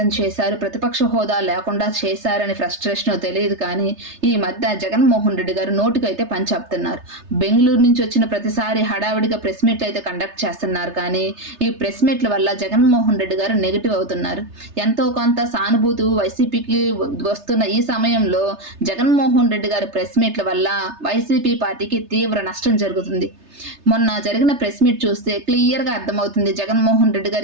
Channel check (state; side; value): late; left; 3.3 ms